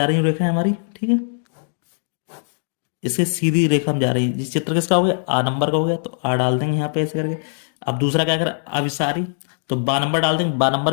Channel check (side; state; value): right; silent; digital silence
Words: रही है रेखा हमारी। ठीक है, इसके सीधी रेखा में जा रही है। जिस चित्र किसका हो गया, आ नंबर का हो गया, तो आ डाल देंगे यहाँ पे ऐसे करके। अब दूसरा क्या करें, अभिसारी, तो बा नंबर डाल देंगे, बा